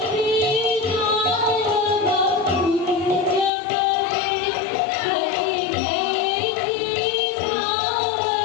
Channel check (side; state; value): right; drops out; at 3.5 s